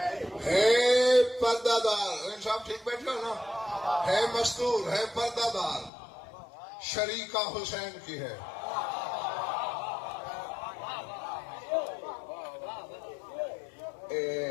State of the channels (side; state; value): right; drops out; at 5.9 s